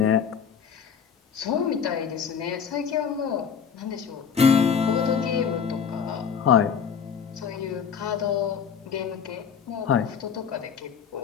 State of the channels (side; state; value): right; quieter; 7.0 dB